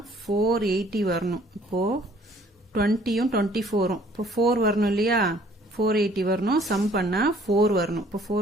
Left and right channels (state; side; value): normal; both; correlation 0.58